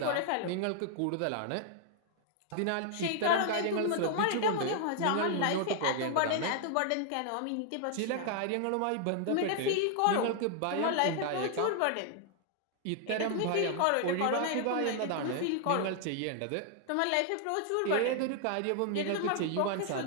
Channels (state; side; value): different; both; correlation 0.00